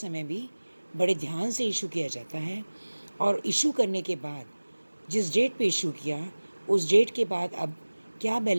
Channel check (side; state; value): both; inverted; correlation -1.00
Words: भी बड़े ध्यान से इशू किया जाता है। और इशू करने के बाद जिस डेट पे इशू किया उस डेट के बाद अब क्या